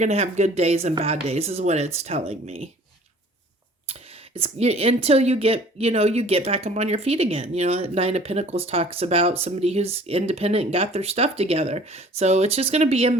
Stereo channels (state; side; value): normal; both; correlation 0.50